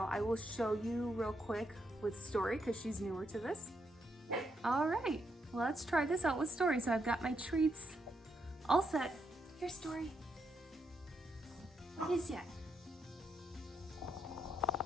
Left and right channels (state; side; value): normal; both; correlation 0.79